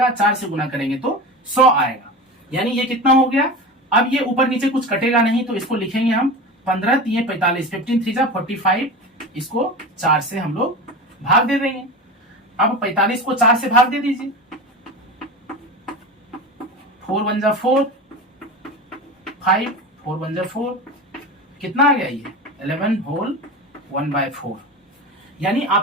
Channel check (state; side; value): normal; both; correlation 0.28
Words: 4 से गुना करेंगे तो 100 आएगा, यानी ये कितना हो गया। अब ये ऊपर नीचे कुछ कटेगा नहीं, तो इसको लिखेंगे हम 15 3 45, 15 3 45, इसको 4 से हम लोग भाग दे देंगे। अब 45 को 4 से भाग दे दीजिए, 4 1 जा 4, 5 4 1 जा 4, कितना आ गया ये 11 होल 1/4। यानी